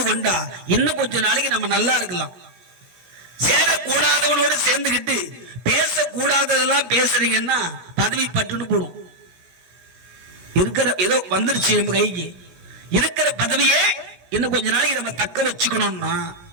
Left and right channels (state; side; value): late; left; 17 ms